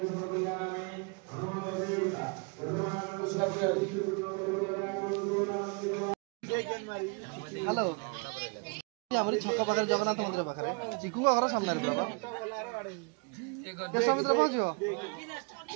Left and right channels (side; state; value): left; quieter; 32.9 dB